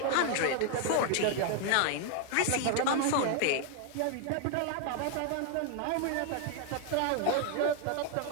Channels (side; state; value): both; different; correlation 0.01